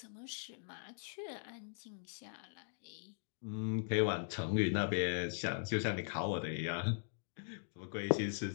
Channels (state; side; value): silent; right; digital silence